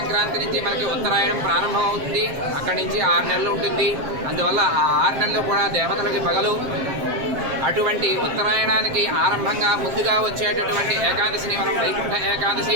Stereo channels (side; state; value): left; late; 7.5 ms